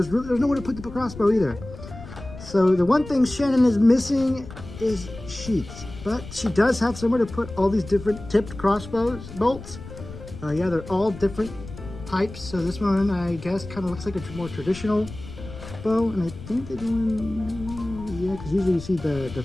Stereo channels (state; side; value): noise; left; rumble, 14 dB below the sound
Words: nowhere to put the crossbow either. So the one thing Shannon is missing is sheaths, but she does have somewhere to put all these different tipped crossbows bolts. Yeah, they're all different types. So this one, I guess, kind of looks like a more traditional bow, and I think they're doing, yeah, because usually you see the